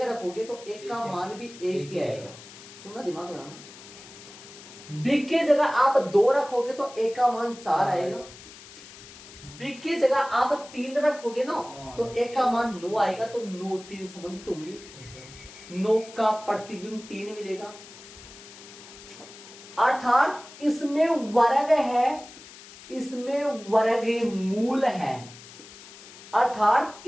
रखोगे तो एक का मान भी एक ही आएगा। सुनना, दिमाग लगाना। बी की जगह आप 2 रखोगे तो एक का मान 4 आएगा। बी की जगह आप 3 रखोगे ना, तो एक का मान 9 आएगा। तो 9 3 संबंधित होंगे, 9 का प्रतिबिंब 3 मिलेगा। अर्थात इसमें वर्ग है, इसमें वर्ग मूल है, अर्थात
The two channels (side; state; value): left; noise; hiss, 18 dB below the sound